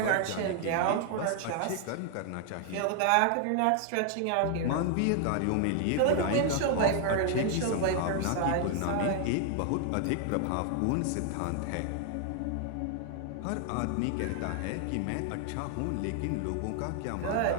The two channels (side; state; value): both; different; correlation 0.00